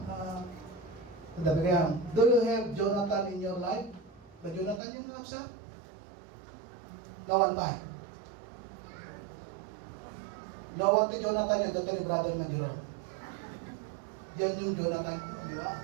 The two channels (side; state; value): left; drops out; at 4.8 s